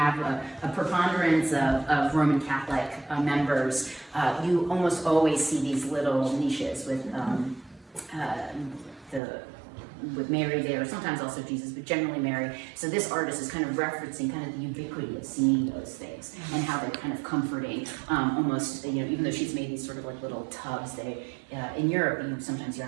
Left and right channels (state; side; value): drops out; left; at 9.2 s